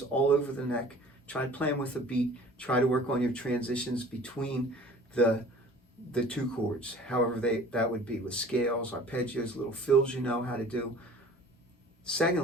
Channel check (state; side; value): normal; both; correlation 0.46